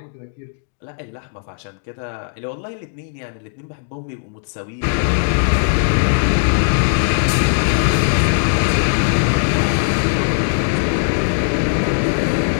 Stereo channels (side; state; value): right; silent; digital silence